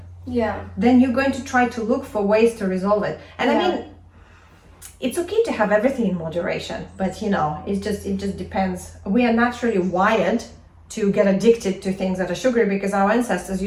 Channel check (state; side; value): identical; both; correlation 1.00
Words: then you're going to try to look for ways to resolve it. And I mean, it's okay to have everything in moderation, but it just depends. We are naturally wired to get addicted to things that are sugary, because our ancestors